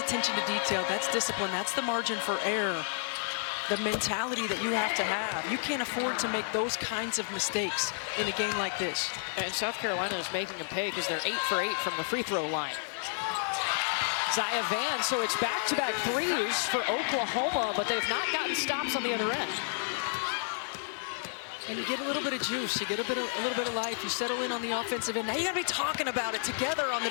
to detail. That's discipline. That's the margin for error. The mentality that you have to have. You can't afford to make those kinds of mistakes in a game like this. And South Carolina is making them pay because they're 8 for 8 from the free throw line. Zaya Van, so it's back-to-back threes for Oklahoma, but they've not gotten stops on the other end. And you get a little bit of juice, you get a little bit of life, you settle in on the offensive end. Now you gotta be talking about it together on the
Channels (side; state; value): right; silent; digital silence